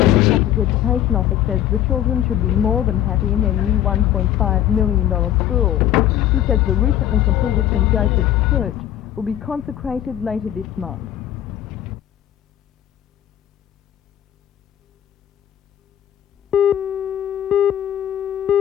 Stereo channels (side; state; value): right; quieter; 11.7 dB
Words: Catholic Education Office says the children should be more than happy in their new $1.5 million school. He says the recently completed St Joseph's Church will be consecrated later this month.